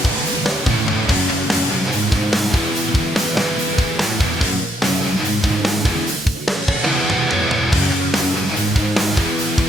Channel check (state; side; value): normal; both; correlation 0.74